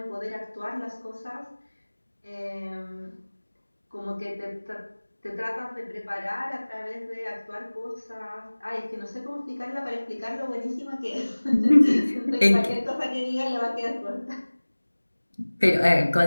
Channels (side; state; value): both; inverted; correlation -1.00